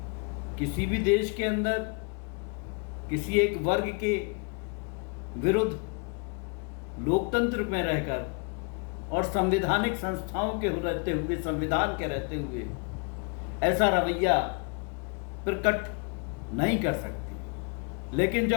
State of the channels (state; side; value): quieter; right; 34.7 dB